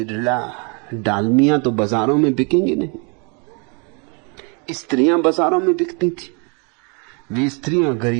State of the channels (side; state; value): left; quieter; 34.6 dB